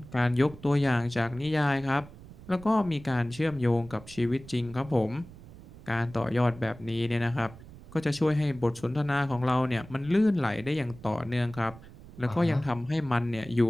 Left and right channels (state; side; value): noise; right; rumble, 18 dB below the sound